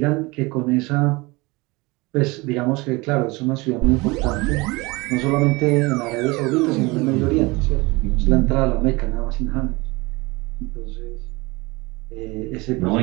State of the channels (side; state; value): left; quieter; 24.2 dB